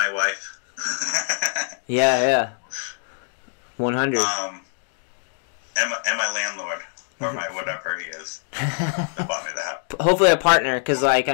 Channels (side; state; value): right; silent; 63 dB below the other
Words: wife. Yeah. 100. And my landlord, or my whatever he is, that bought me the house. Hopefully a partner, because like